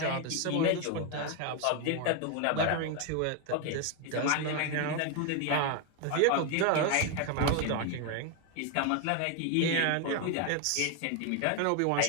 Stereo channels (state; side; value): different; both; correlation 0.01